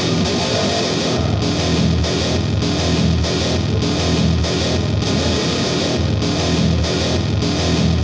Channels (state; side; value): identical; both; correlation 1.00